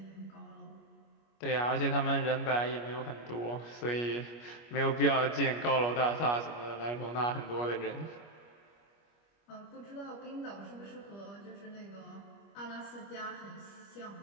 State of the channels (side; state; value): right; late; 25 ms